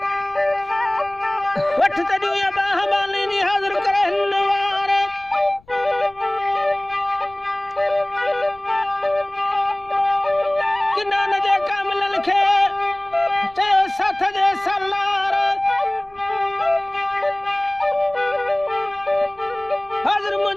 वठ तजू या बाह बाली नी हाजिर करे नवार किना न जे कामल लिखे चयो साथ जे सलार हाजिर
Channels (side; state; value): left; noise; rumble, 28 dB below the sound